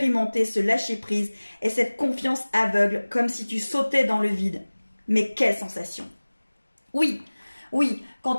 ce lâcher-prise et cette confiance aveugle, comme si tu sautais dans le vide. Mais quelle sensation! Oui, oui,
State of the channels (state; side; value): inverted; both; correlation -1.00